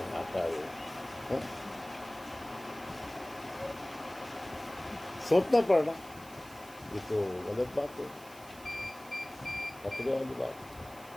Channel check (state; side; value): noise; right; hiss, 20 dB below the sound